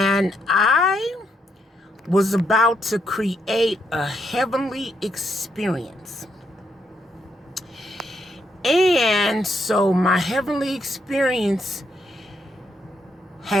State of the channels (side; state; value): both; normal; correlation 0.77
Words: I was about to create a heavenly experience. And so my heavenly experience